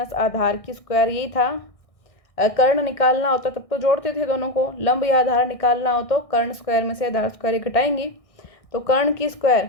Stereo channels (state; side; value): late; right; 1.6 ms